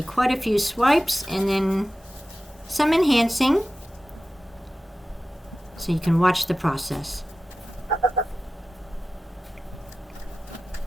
quite a few swipes and then some enhancing so you can watch the process.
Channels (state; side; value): normal; both; correlation 0.94